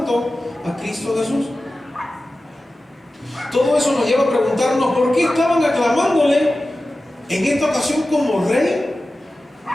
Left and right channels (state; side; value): normal; both; correlation 0.95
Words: a Cristo Jesús. Todo eso nos lleva a preguntarnos por qué estaban aclamándole en esta ocasión como rey.